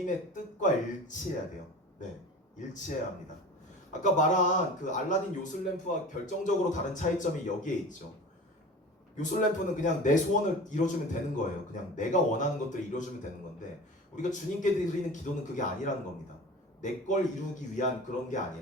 뜻과 일치해야 돼요. 네, 일치해야 합니다. 아까 말한 그 알라딘 요술램프와 결정적으로 다른 차이점이 여기에 있죠. 요술램프는 그냥 내 소원을 이뤄주면 되는 거예요. 그냥 내가 원하는 것들을 이뤄주면 되는 건데 우리가 주님께 드리는 기도는 그게 아니라는 겁니다. 내 걸 이루기 위한 그런 게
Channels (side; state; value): both; normal; correlation 0.37